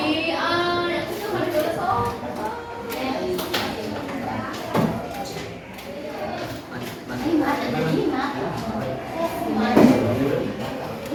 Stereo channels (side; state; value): both; identical; correlation 1.00